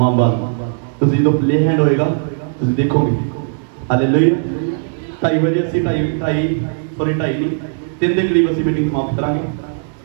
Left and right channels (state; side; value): silent; left; digital silence